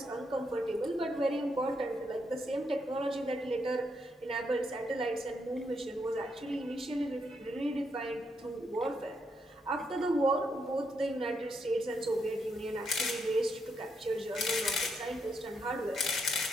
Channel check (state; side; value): normal; both; correlation 0.79